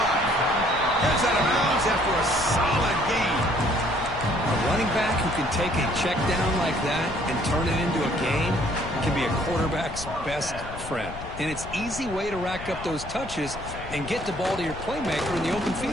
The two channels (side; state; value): left; noise; rumble, 12 dB below the sound